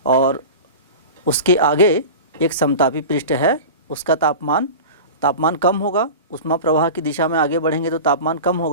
और उसके आगे एक समतापी पृष्ठ है, उसका तापमान कम होगा, ऊष्मा प्रवाह की दिशा में आगे बढ़ेंगे तो तापमान कम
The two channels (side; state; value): both; inverted; correlation -0.32